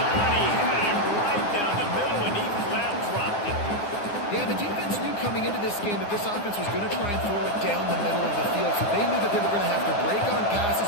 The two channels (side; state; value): right; late; 9.8 ms